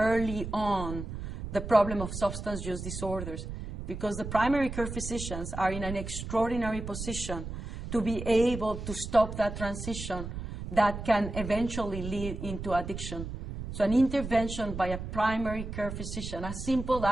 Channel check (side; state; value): right; noise; rumble, 7 dB below the sound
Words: on the problem of substance use disorders, because the primary care physicians are in an extraordinary position to be able to stop that transition that can eventually lead into addiction. So an intervention by a primary care physician, as simple